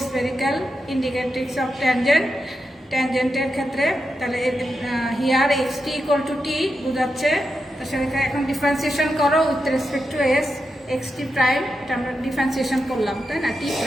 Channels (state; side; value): normal; both; correlation 0.87